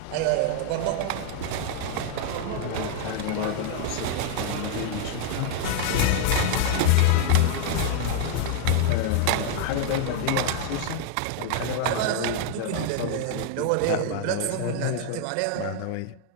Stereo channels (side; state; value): both; different; correlation 0.00